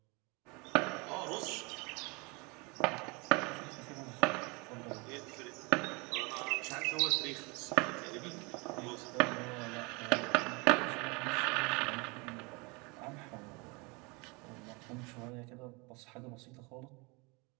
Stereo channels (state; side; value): quieter; left; 28.1 dB